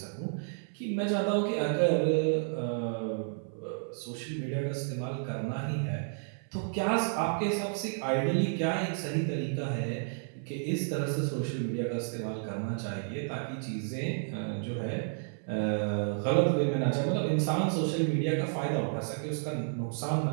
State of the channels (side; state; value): left; silent; 56 dB below the other